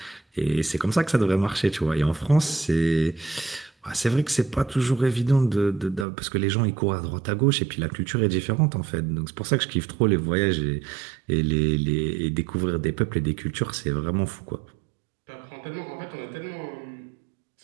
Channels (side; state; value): left; drops out; at 6.1 s